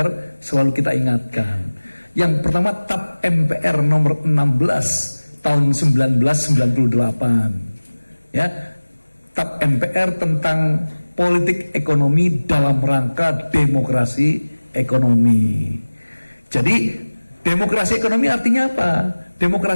selalu kita ingatkan. Yang pertama tab MPR nomor 16 tahun 1998. Ya, TAP MPR tentang politik ekonomi dalam rangka demokrasi ekonomi. Jadi demokrasi ekonomi artinya apa?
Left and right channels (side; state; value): both; inverted; correlation -1.00